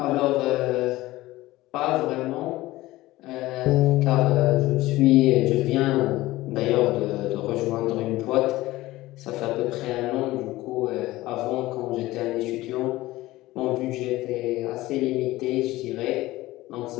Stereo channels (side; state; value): right; quieter; 17.8 dB